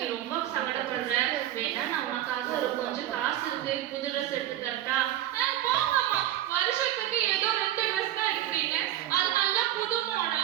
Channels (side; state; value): left; quieter; 12.9 dB